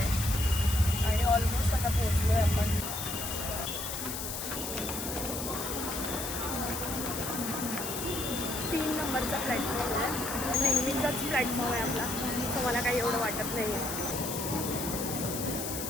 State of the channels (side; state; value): left; noise; hiss, 5 dB below the sound